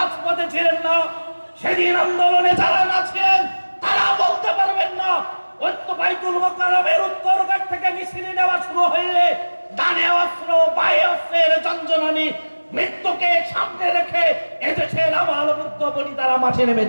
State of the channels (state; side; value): inverted; both; correlation -1.00